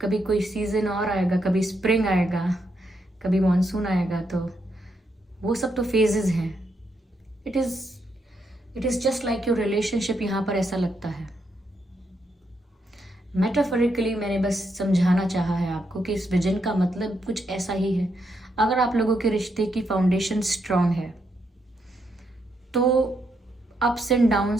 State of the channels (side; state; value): both; normal; correlation 0.79